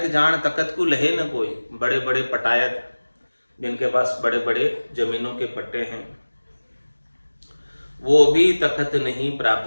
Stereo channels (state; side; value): inverted; both; correlation -1.00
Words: जान तकत को लहे न कोई, बड़े बड़े पटायत जिनके पास बड़े बड़े जमीनों के पट्टे हैं, वो भी तखत नहीं